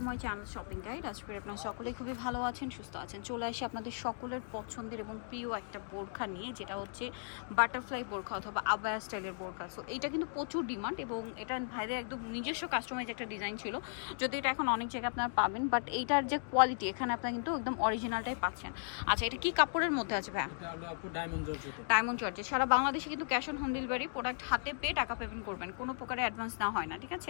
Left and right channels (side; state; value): right; silent; digital silence